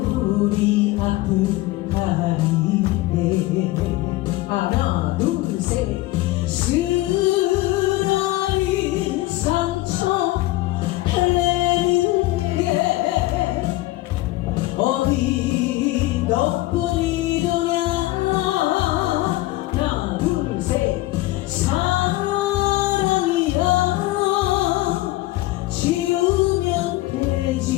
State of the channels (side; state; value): right; quieter; 18.2 dB